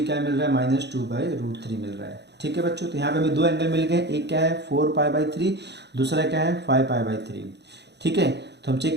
क्या मिल रहा है, -2/√3 मिल रहा है। ठीक है बच्चों। तो यहाँ पे हमें दो एंगल मिल गए, एक क्या है 4π/3, दूसरा क्या है 5π/3। ठीक है। तो हम चेक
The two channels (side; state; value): left; late; 0.50 ms